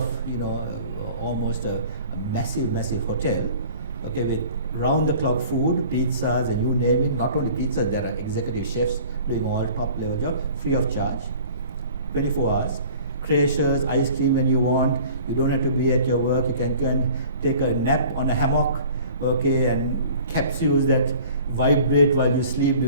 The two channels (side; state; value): both; inverted; correlation -0.47